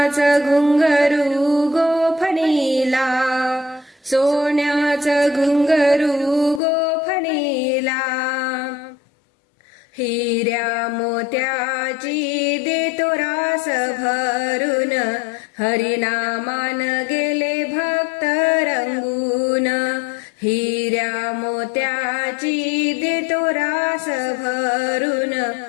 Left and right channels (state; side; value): drops out; right; at 6.6 s